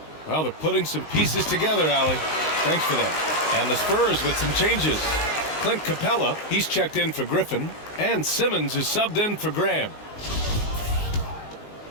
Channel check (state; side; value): late; right; 19 ms